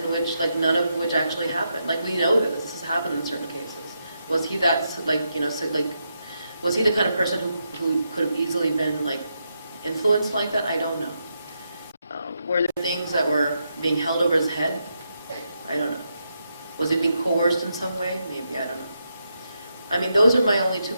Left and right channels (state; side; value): inverted; both; correlation -0.83